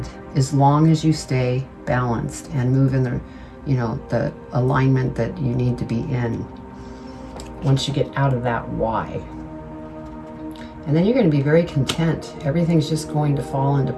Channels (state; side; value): identical; both; correlation 1.00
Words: as long as you stay balanced and move in the, you know, the alignment that you need to be in once you get out of that why. And then you're going to be very content. Everything's just going to fall into